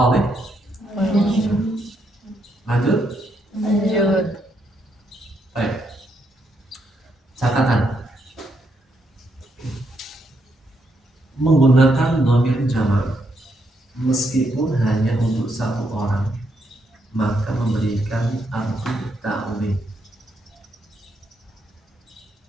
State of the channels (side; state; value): both; normal; correlation 0.77